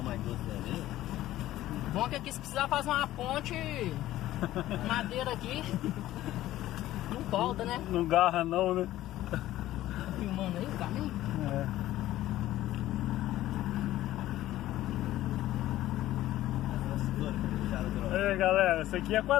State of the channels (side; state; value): right; quieter; 14.7 dB